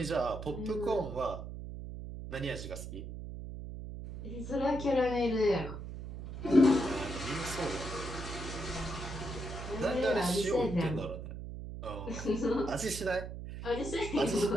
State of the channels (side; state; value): right; noise; hum, 8 dB below the sound